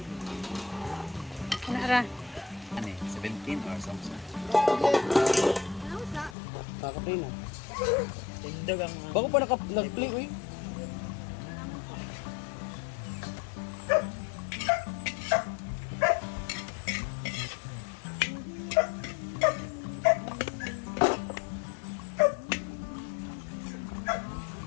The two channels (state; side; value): drops out; right; at 6.4 s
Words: Ano ra? Ano eh, 17 or something. Kakaplay na. Tindog ang... Bako pa nag-play, uy.